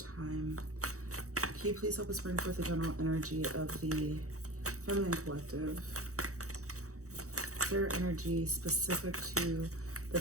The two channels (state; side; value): late; left; 0.65 ms